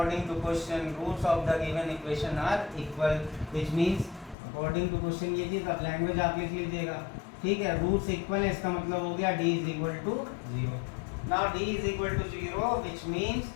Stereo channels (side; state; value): right; drops out; at 4.4 s